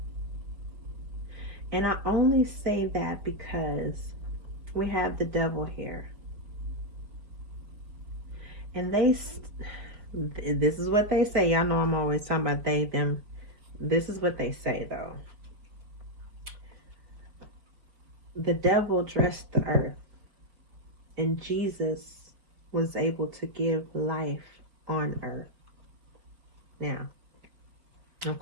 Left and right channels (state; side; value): late; left; 4.9 ms